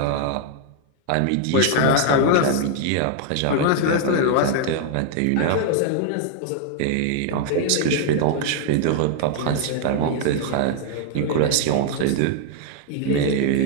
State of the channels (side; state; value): both; different; correlation 0.00